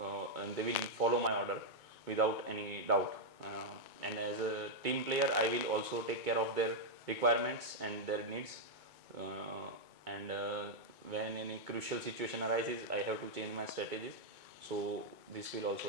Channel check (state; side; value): late; left; 2.2 ms